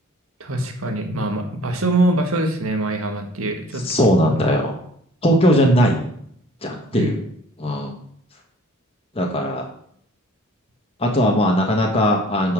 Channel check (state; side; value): normal; both; correlation 0.53